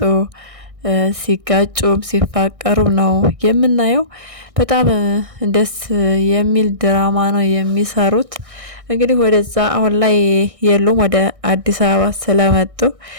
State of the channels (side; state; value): left; late; 1.6 ms